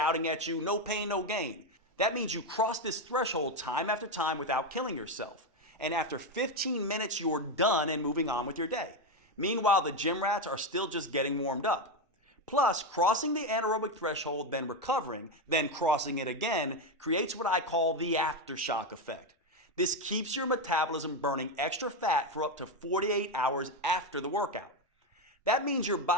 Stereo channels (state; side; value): normal; both; correlation 0.09